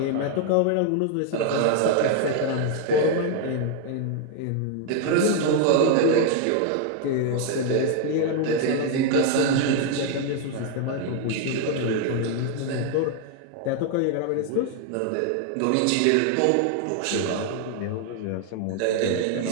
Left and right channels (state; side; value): different; both; correlation 0.00